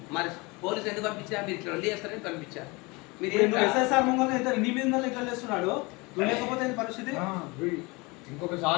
మరి పోలీసు ఎందుకు పంపించారు? మీరు ఇట్లా వల్లి చేస్తారని పంపించారు. మీరు ఇప్పుడు ఏంట్రా? నువ్వు ఎస్ఎస్ఆర్ ముంగల్ ఎంత నీ మీద లెక్క చేస్తున్నాడు. నువ్వు లేకపోతే ఏంది పరిస్థితి?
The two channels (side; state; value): right; quieter; 25.8 dB